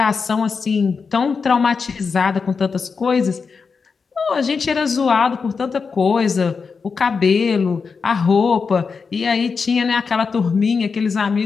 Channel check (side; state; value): right; quieter; 5.2 dB